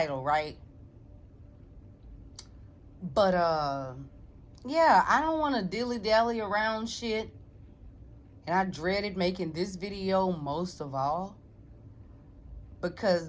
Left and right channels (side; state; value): both; identical; correlation 1.00